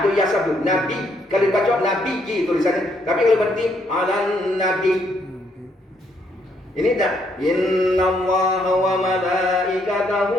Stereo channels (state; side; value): normal; both; correlation 0.72